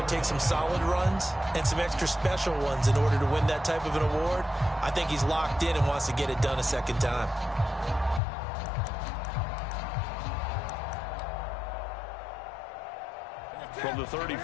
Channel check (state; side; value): drops out; right; at 8.2 s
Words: takes some solid runs and some extra special ones in order to win that type of an award. I think he's locked in and wants to get it done a second time. From the